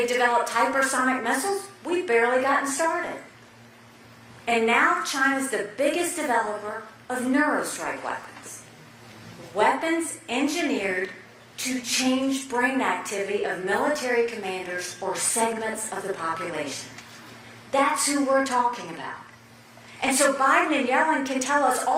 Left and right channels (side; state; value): both; identical; correlation 1.00